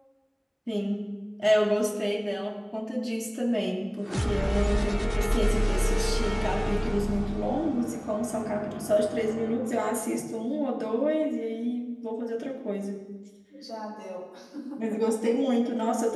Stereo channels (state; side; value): identical; both; correlation 1.00